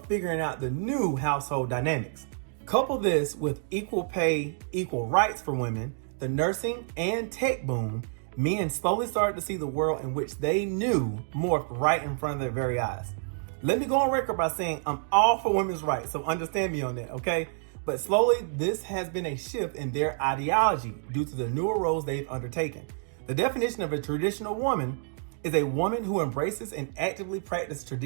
figuring out the new household dynamics. Couple this with equal pay, equal rights for women, the nursing and tech boom, men slowly started to see the world in which they knew morphed right in front of their very eyes. Let me go on record by saying I'm all for women's rights, so understand me on that, okay? But slowly, this has been a shift in their ideology due to the newer roles they've undertaken. The definition of a traditional woman is a woman who embraces and actively practices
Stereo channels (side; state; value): left; silent; digital silence